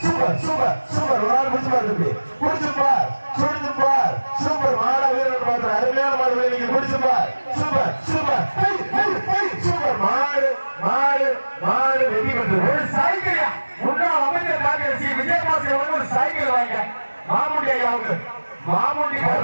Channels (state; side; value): inverted; both; correlation -1.00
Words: சூப்பர் சூப்பர் சூப்பர் ஒரு ஆள் முடிச்சு பாரு, முடிச்சுப்பார் சுடுப்பார். சூப்பர் மாட வீரர் பார்த்து அருமையான மாடு நீங்க முடிச்சுப்பார். சூப்பர் சூப்பர் சூப்பர் மாடு மாடு மாடு வெற்றி பெற்று ஒரு சைக்கிள் முன்னாள் அமைச்சர் டாக்டர் சி விஜயபாஸ்கர் ஒரு சைக்கிள் வாங்க. மாமுண்டி ஐயாவுக்கு மாமுண்டி